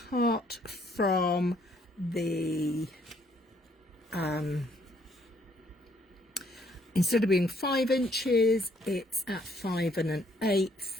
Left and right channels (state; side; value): normal; both; correlation 0.67